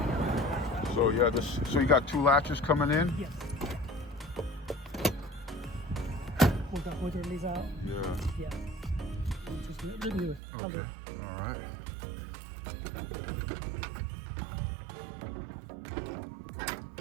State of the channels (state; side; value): drops out; left; at 10.4 s